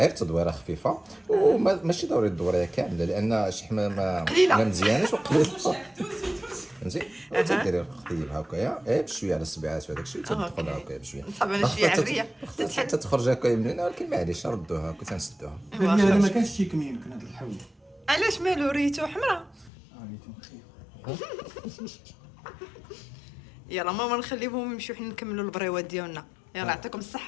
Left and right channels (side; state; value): right; drops out; at 19.7 s